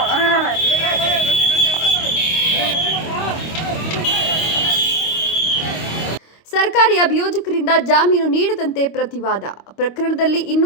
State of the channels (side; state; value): right; late; 25 ms